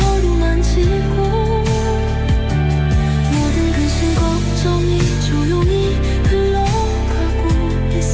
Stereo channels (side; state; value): both; identical; correlation 1.00